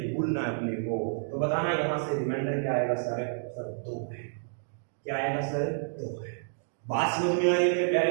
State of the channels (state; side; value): silent; left; digital silence